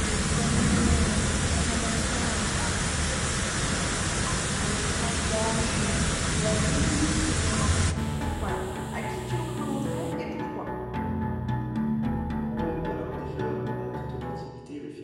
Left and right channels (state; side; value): identical; both; correlation 1.00